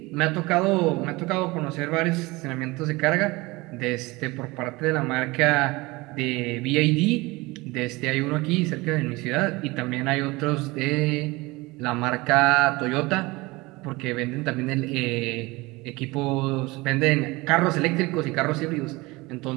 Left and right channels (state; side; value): quieter; left; 22.5 dB